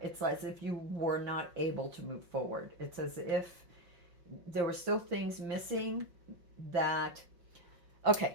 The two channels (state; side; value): late; left; 5.6 ms